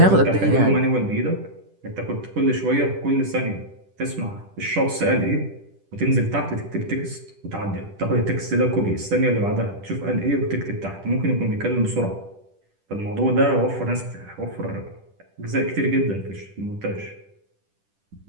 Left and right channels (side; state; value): left; late; 10 ms